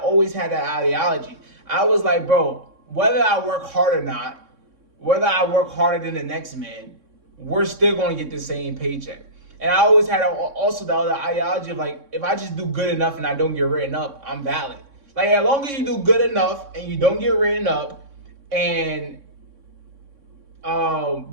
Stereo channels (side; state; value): left; late; 3.6 ms